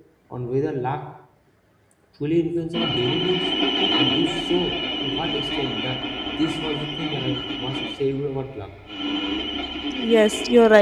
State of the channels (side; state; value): both; identical; correlation 1.00